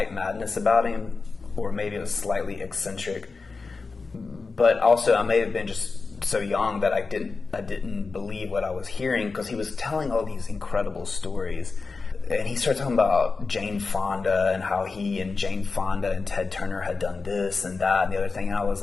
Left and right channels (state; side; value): quieter; right; 4.2 dB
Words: madness about him, or maybe it was slightly eccentric. But also, I may have been just so young that I didn't believe what I was hearing, because he was telling all these incredible stories. And he started talking about Jane Fonda and how he and Jane Fonda and Ted Turner had done this and that and the other thing. And I was